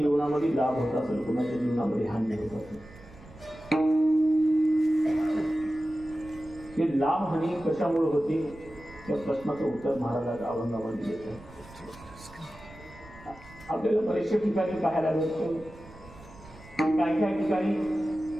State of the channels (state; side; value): noise; right; rumble, 20 dB below the sound